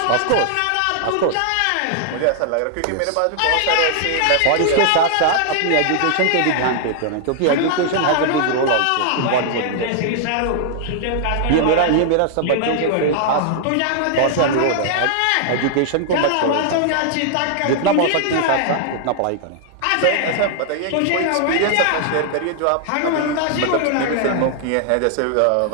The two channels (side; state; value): both; different; correlation 0.00